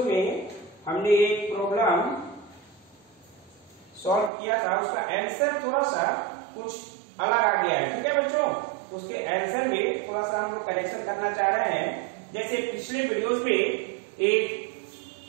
में हमने एक प्रॉब्लम सॉल्व किया था, उसका आंसर थोड़ा सा कुछ अलग आ गया है। ठीक है बच्चों, तो उसके आंसर में थोड़ा सा हम लोग करेक्शन करना चाह रहे हैं। जैसे पिछले वीडियोस में एक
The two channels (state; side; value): drops out; left; at 4.3 s